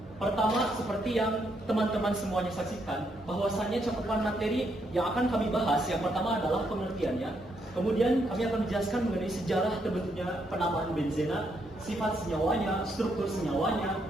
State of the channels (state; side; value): normal; both; correlation 0.76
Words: Pertama, seperti yang teman-teman semuanya saksikan, bahwasannya cakupan materi yang akan kami bahas yang pertama adalah pengertiannya. Kemudian kami akan menjelaskan mengenai sejarah terbentuknya penamaan benzena, sifat senyawanya, struktur senyawanya,